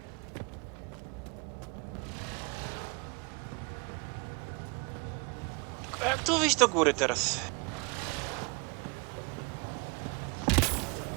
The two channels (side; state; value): left; quieter; 30.3 dB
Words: A jak tu wyjść do góry teraz?